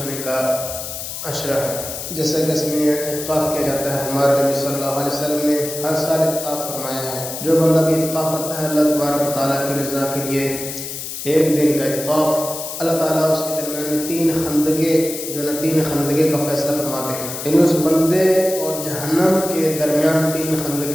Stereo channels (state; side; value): noise; left; hiss, 7 dB below the sound